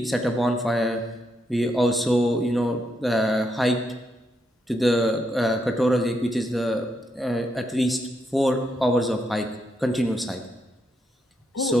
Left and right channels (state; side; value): normal; both; correlation 0.80